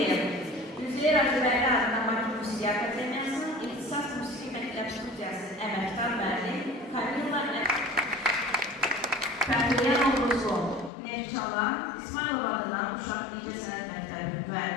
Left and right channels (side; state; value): right; drops out; at 10.9 s